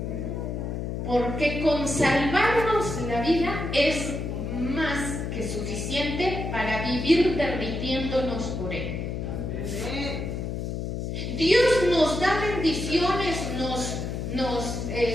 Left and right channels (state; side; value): noise; left; hum, 4 dB below the sound